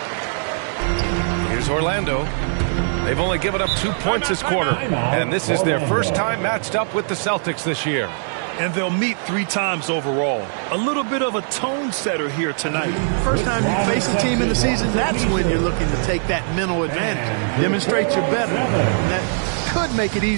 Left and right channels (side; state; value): left; silent; digital silence